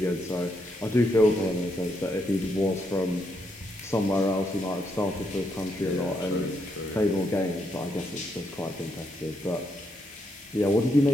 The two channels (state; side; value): normal; both; correlation 0.78